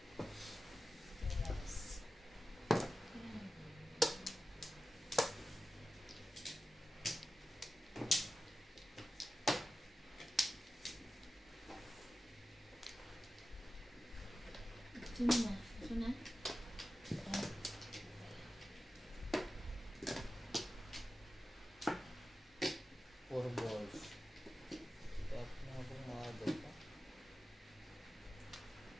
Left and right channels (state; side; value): normal; both; correlation 0.93